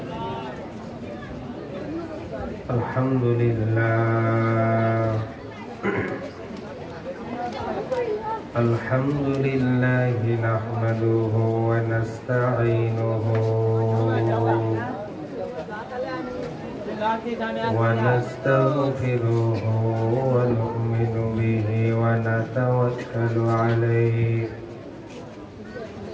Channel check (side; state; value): both; identical; correlation 1.00